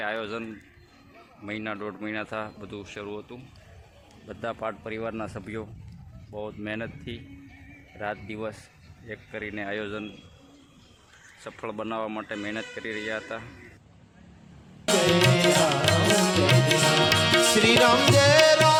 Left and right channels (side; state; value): both; identical; correlation 1.00